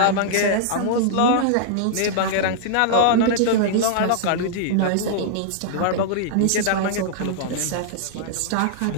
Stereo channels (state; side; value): different; both; correlation -0.01